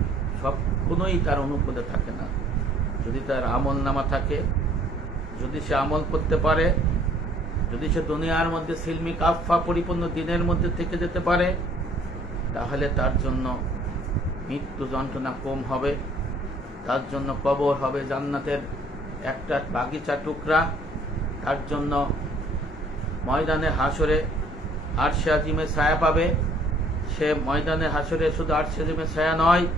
কোনোই তার অনুকূলে থাকে না। যদি তার আমল নামা থাকে, যদি সে আমল করতে পারে, যদি সে দুনিয়ার মধ্যে সিলমি কাফা পরিপূর্ণ দিনের মধ্যে থেকে যেতে পারে, তাহলে তার জন্য মৃত্যু যন্ত্রণা কম হবে, তার জন্য কবর হবে জান্নাতের একটা বাগিচা টুকরা, তার জন্য ময়দানে হাসরে আরশে আজিমে ছায়া পাবে। সে ময়দানে হাসরে শুধু আরশে আজিমে ছায়া নয়,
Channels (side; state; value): both; normal; correlation 0.59